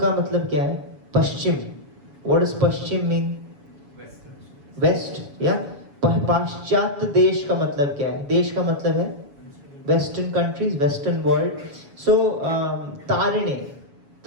मतलब क्या है? पश्चिम. व्हाट इज पश्चिम मीन? वेस्ट. या पाश्चात्य देश का मतलब क्या है? देश का मतलब है वेस्टर्न कंट्रीज, वेस्टर्न वर्ल्ड. सो तारिणे,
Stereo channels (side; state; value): left; late; 7.1 ms